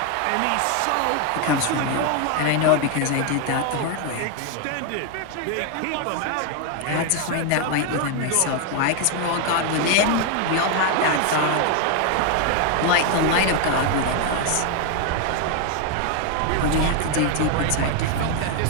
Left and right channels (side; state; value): both; different; correlation 0.01